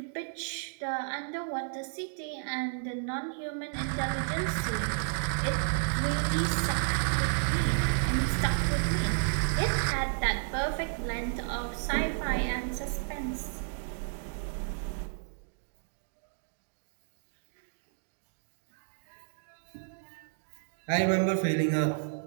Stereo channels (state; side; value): silent; left; digital silence